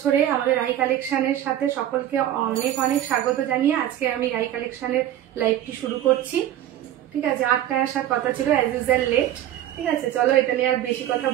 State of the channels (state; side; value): quieter; left; 12.1 dB